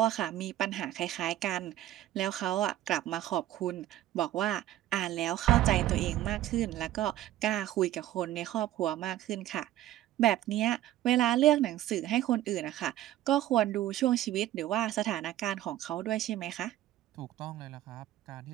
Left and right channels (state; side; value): quieter; left; 13.7 dB